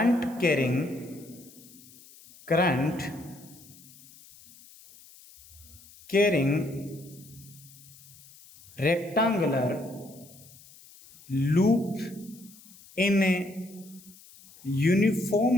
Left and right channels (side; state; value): left; noise; hiss, 23 dB below the sound